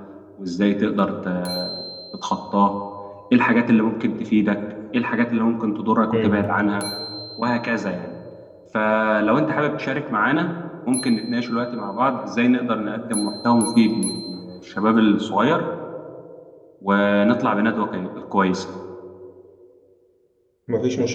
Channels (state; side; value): identical; both; correlation 1.00